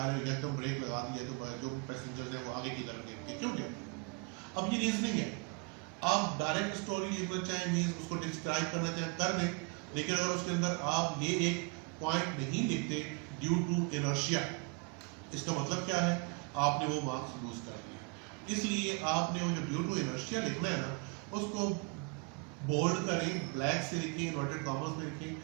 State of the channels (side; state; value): left; quieter; 30.0 dB